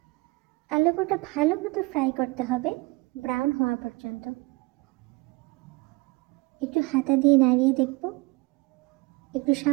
আলু কটা ভালো মতো ফ্রাই করতে হবে ব্রাউন হওয়া পর্যন্ত। একটু হাতা দিয়ে নাড়িয়ে দেখব, একটু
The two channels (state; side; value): quieter; left; 24.5 dB